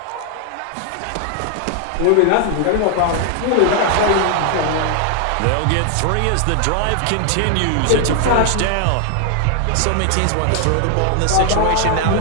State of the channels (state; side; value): different; both; correlation 0.00